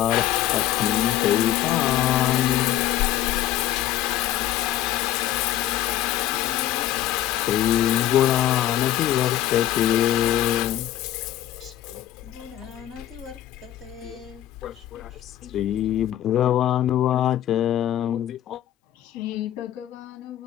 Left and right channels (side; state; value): right; quieter; 12.7 dB